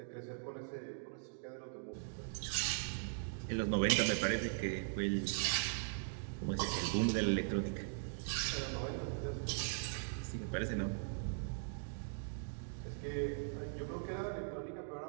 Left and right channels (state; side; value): silent; left; digital silence